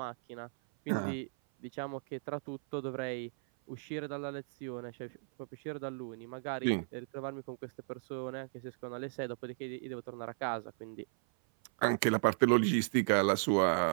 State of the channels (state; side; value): silent; left; 54 dB below the other